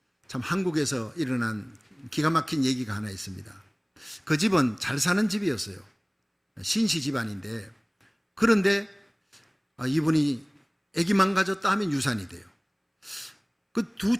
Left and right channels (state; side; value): identical; both; correlation 1.00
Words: 참 한국에서 일어난 기가 막힌 얘기가 하나 있습니다. 그 집은 잘 사는 집이었어요. 신시 집안인데, 그런데 이분이 아기만 가졌다 하면 유산이 돼요. 그 두